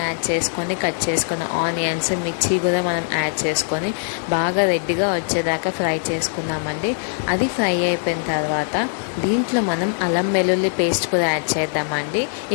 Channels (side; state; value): right; silent; 59 dB below the other